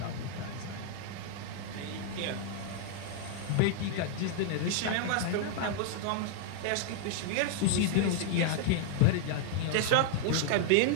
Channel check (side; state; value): both; different; correlation -0.01